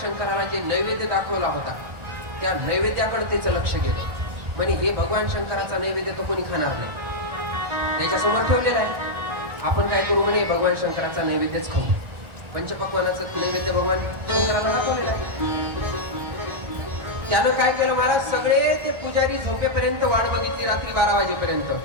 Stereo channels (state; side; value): late; left; 1.4 ms